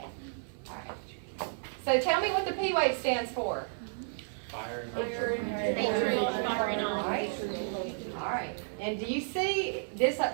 All right. So tell me what the P wave stands for. Atrial firing off. All right. And do you see this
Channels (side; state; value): left; silent; 56 dB below the other